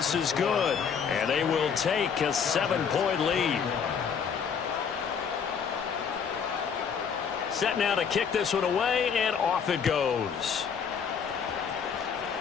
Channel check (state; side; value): quieter; right; 6.8 dB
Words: is good, and they will take a 7-point lead. Set now to kick this one away, and off it goes.